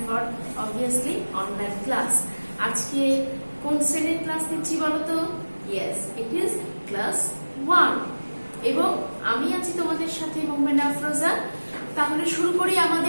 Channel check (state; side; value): inverted; both; correlation -1.00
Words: for obviously online class. আজকে কোন শ্রেণীর ক্লাস নিচ্ছি বলো তো? ইয়েস, ইট ইজ ক্লাস 1 এবং আমি আছি তোমাদের সাথে মোহাম্মদ আফরোজা। তাহলে শুরু করি